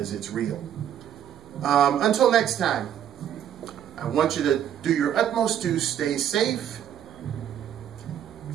it's real. Until next time, I want you to do your utmost to stay safe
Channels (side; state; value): left; quieter; 10.0 dB